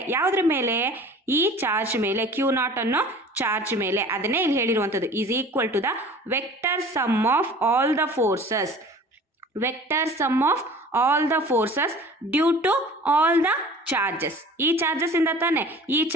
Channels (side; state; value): both; normal; correlation 0.44